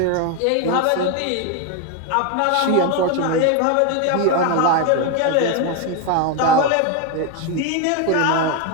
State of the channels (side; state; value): both; different; correlation 0.02